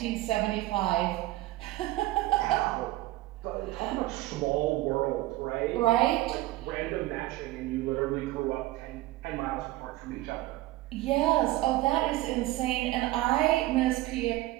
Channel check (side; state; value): left; quieter; 17.2 dB